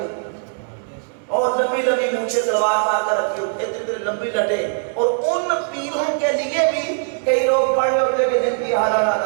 اور لمبی لمبی مونچھیں تلوار مار کر رکھی ہوتی، اتنی لمبی لٹے، اور ان پیروں کے لیے بھی کئی لوگ پڑھ رہے ہوتے کہ جن کی ہر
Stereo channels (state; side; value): silent; left; digital silence